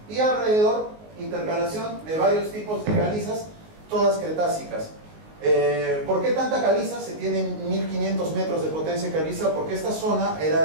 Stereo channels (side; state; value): left; late; 19 ms